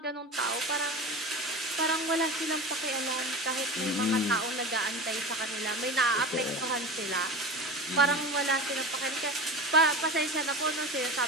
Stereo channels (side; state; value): both; normal; correlation 0.30